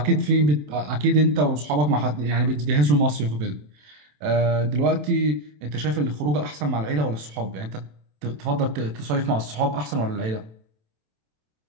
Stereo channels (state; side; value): late; left; 27 ms